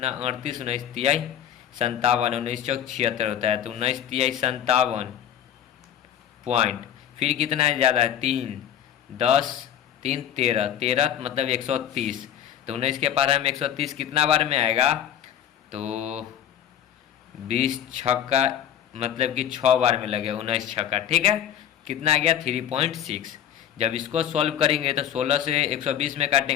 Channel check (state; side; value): quieter; right; 10.0 dB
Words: 38, 19 तिहाई 57, 19 चौक 76 होता है, तो 19 तिहाई 57 पॉइंट, फिर कितना है ज़्यादा है 3, 10, 3 13, 13 मतलब 130, तो 19 के पार हम 130 कितना बार में आएगा, तो 20 छक्का मतलब कि 6 बार में लगे 19 छक्का, ठीक है, कितना आ गया 3.6। जब इसको सॉल्व करेंगे तो 16 से 120 में